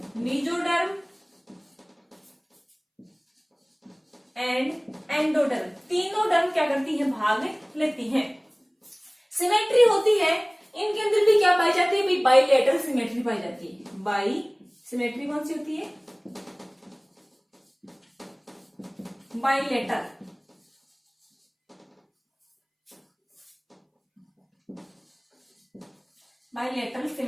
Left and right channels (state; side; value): identical; both; correlation 1.00